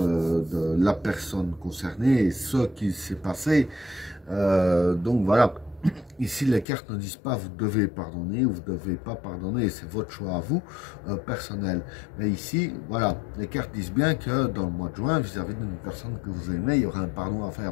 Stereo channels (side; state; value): right; drops out; at 6.7 s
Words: de la personne concernée et ce qui s'est passé. Donc voilà, ici les cartes ne disent pas vous devez pardonner ou vous ne devez pas pardonner, c'est votre choix à vous, personnel. Mais ici, voilà, les cartes disent bien que dans le mois de juin, vis-à-vis d'une personne que vous aimez, il y aura un pardon à